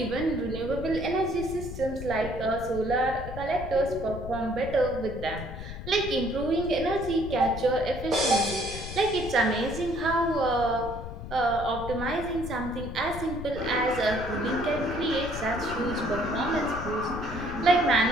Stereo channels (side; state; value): left; noise; rumble, 9 dB below the sound